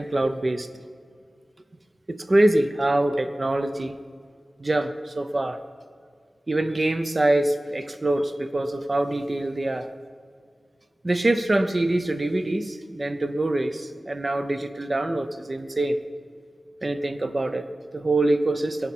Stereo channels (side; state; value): both; normal; correlation 0.97